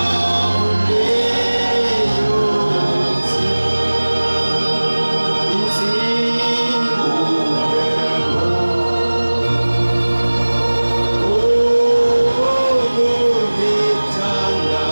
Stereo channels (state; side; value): inverted; both; correlation -1.00